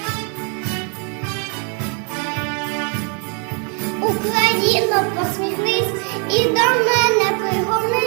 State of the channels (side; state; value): left; quieter; 37.9 dB